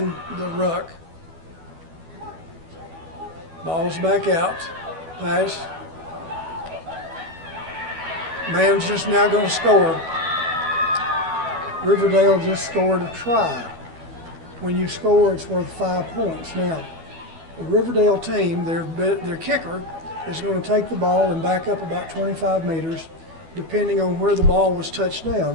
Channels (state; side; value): late; left; 12 ms